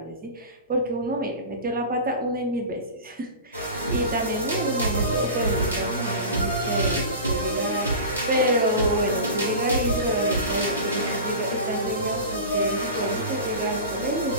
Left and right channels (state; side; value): inverted; both; correlation -0.31